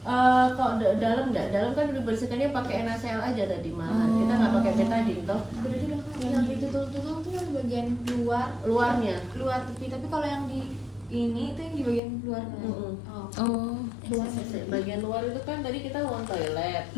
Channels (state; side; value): drops out; right; at 12.0 s